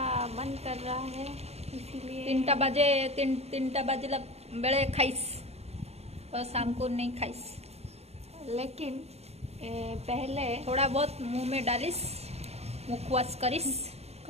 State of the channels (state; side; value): late; left; 0.30 ms